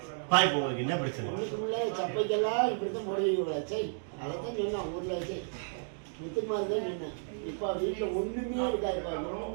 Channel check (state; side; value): silent; left; digital silence